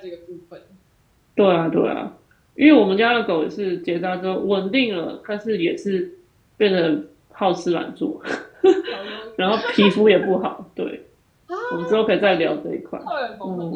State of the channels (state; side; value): identical; both; correlation 1.00